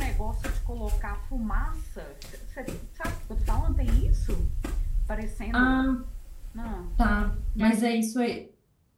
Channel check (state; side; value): identical; both; correlation 1.00